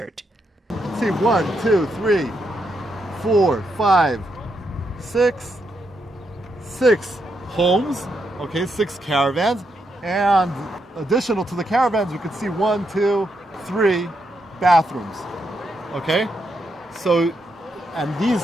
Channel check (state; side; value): normal; both; correlation 0.81